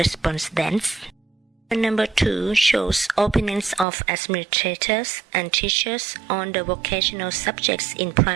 Number 2 shows opinions of administrators and teachers on the vocational subjects in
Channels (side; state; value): left; drops out; at 3.9 s